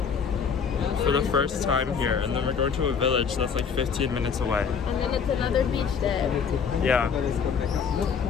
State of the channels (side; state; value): right; quieter; 6.4 dB